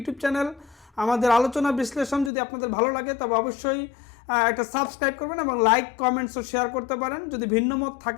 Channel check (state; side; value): drops out; right; at 2.3 s